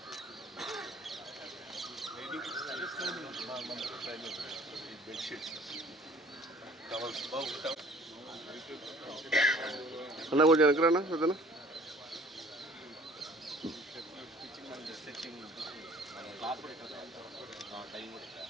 బెడ్షీట్స్, టవల్స్ బాగుంటాం. అన్న కొంచెం వెనకరానా పెద్దనా. స్టిచ్చింగ్ టైం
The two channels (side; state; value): both; normal; correlation 0.52